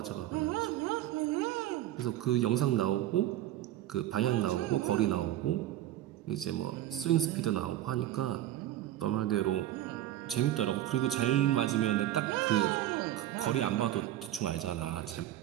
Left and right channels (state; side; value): quieter; left; 13.3 dB